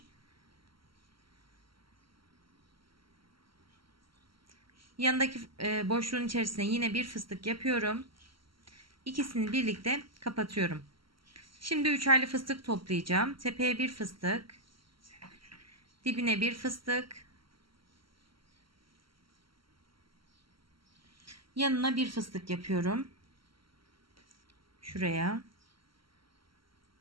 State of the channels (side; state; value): left; late; 0.74 ms